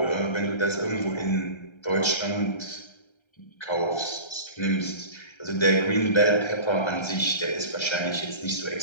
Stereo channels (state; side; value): late; right; 1.3 ms